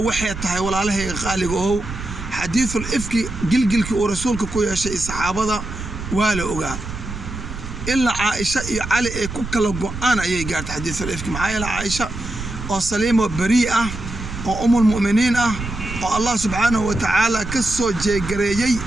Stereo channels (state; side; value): noise; right; rumble, 8 dB below the sound